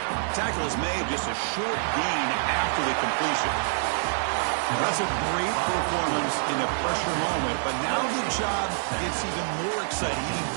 Tackle is made, just a short gain after the completion. That's a great performance in a pressure moment, but now the job gets even more exciting, even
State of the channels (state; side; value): silent; left; 58 dB below the other